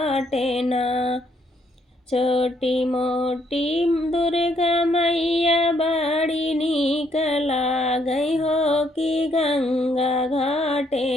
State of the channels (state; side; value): normal; both; correlation 0.71